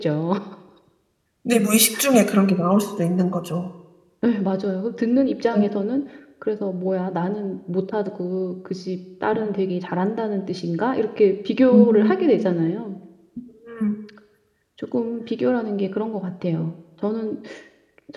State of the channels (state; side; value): identical; both; correlation 1.00